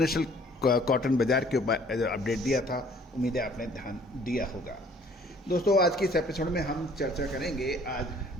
कॉटन बाजार के ऊपर अपडेट दिया था। उम्मीद है आपने ध्यान दिया होगा। दोस्तों आज की इस एपिसोड में हम चर्चा करेंगे आज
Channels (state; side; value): normal; both; correlation 0.56